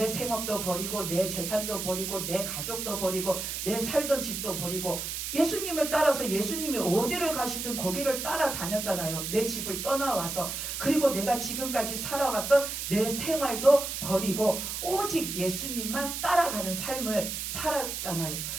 생업도 버리고 내 재산도 버리고 내 가족도 버리고 내 살던 집도 버리고 예수님을 따라서 예수님이 어디를 가시든 거기를 따라다녔잖아요. 내 집을 떠나와서 그리고 내가 지금까지 살아왔던 내 생활도 버리고 오직 예수님만 따라가는 삶을 살았잖아요.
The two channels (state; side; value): noise; right; hiss, 4 dB below the sound